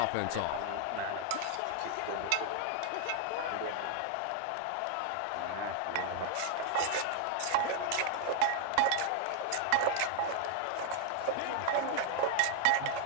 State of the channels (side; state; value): both; different; correlation 0.00